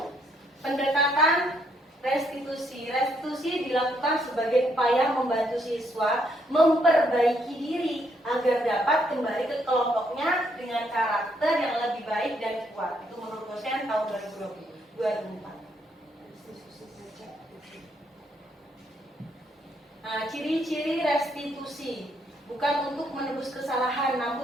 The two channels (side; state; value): both; normal; correlation 0.73